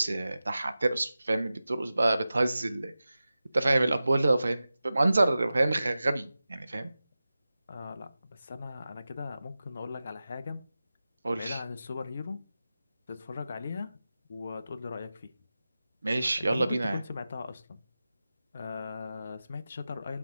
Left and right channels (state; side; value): inverted; both; correlation -0.94